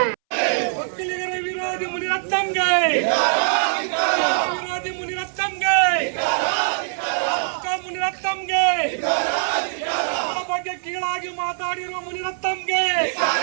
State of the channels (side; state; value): left; silent; 64 dB below the other